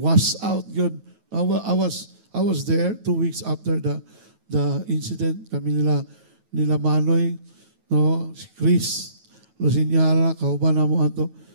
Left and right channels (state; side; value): late; left; 9.2 ms